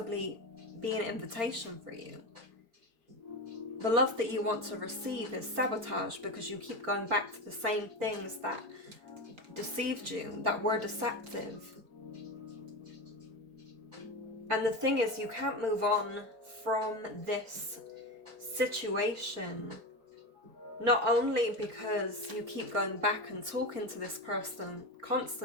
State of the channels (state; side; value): late; left; 4.4 ms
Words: be an invitation for you. The love that you want to receive is sabotage because you keep going back to the same things that deceived you, that were deceptive. And the thing is, you can't move on from this situation, not only because you keep going back and talking to this person